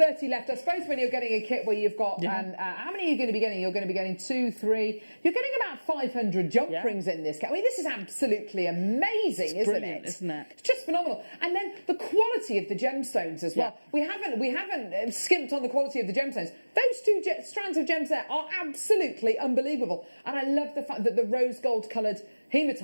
left. I suppose when you're getting a kit where you've got how many are you going to be getting? You're going to be getting 2, 3. You're getting about 500 jump rings in this kit. I mean, this is absolutely amazing, isn't it? Isn't it? It's just phenomenal. And then the quality of the gemstones as well. We haven't skimped on the quality of the gemstones. Those 2 strands of gems there are absolutely unbelievable. And I love the fact that the rose gold coloured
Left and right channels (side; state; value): both; inverted; correlation -1.00